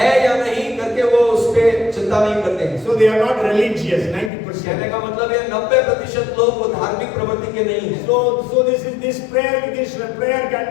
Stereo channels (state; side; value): drops out; right; at 4.3 s